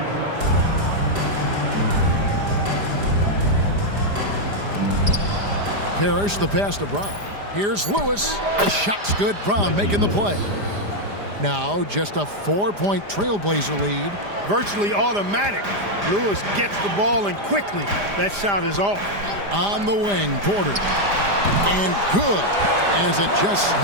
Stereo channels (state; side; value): late; left; 5.0 ms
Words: Parrish, the pass to Brown. Here's Lewis. The shot's good. Brown making the play. Now just a 4-point Trailblazer lead. Virtually automatic. Lewis gets the ball and quickly that shot is off. On the wing, Porter. And good, as it just